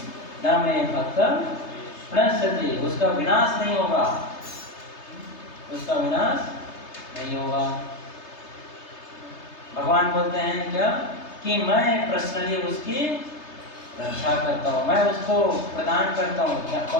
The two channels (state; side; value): late; right; 3.3 ms